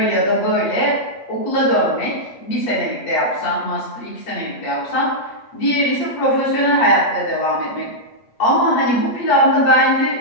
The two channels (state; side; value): late; right; 8.3 ms